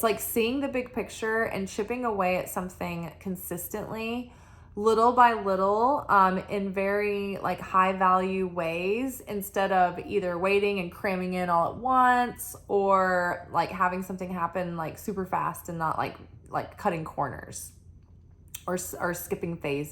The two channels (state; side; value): identical; both; correlation 1.00